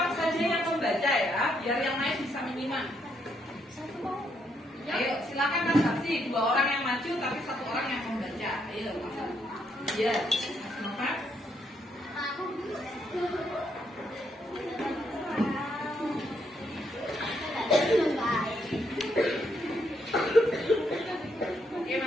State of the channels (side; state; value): both; normal; correlation 0.75